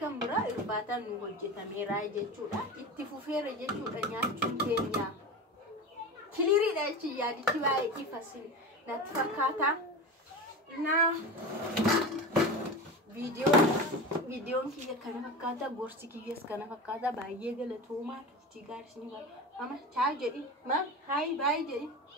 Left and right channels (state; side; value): normal; both; correlation 0.27